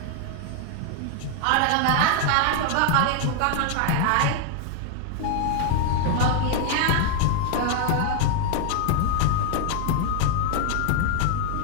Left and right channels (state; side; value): different; both; correlation 0.00